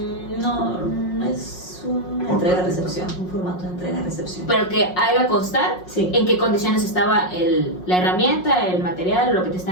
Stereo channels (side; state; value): right; late; 5.5 ms